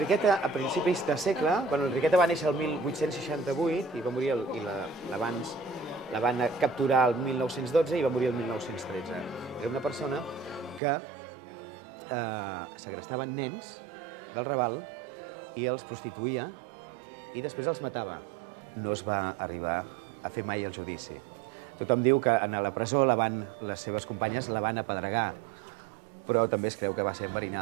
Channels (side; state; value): left; drops out; at 10.8 s